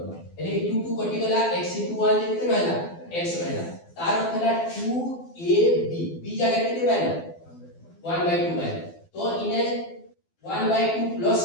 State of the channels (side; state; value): right; late; 12 ms